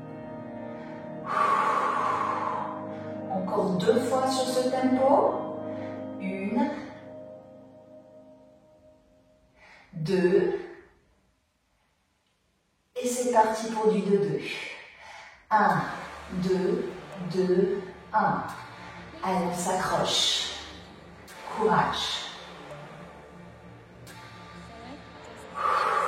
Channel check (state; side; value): identical; both; correlation 1.00